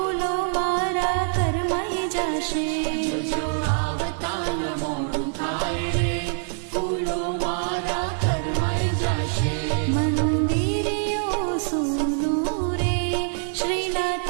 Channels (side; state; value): left; silent; digital silence